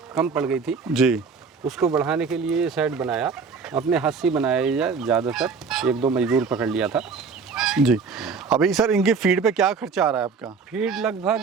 कम पड़ गई थी जी। उसको बढ़ाने के लिए ये शेड बनाया, अपने हाथ से बनाया, ज़्यादातर 1-2 मजदूर पकड़ लिया था जी। अभी सर इनकी फीड पे क्या खर्चा आ रहा है आपका? फीड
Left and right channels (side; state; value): left; quieter; 5.2 dB